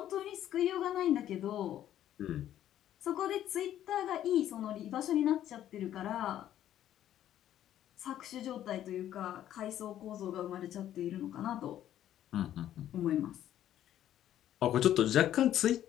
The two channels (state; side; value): quieter; right; 11.7 dB